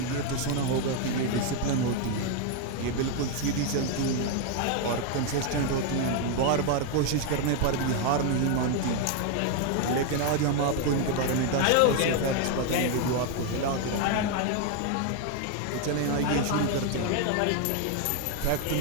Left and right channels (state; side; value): different; both; correlation 0.01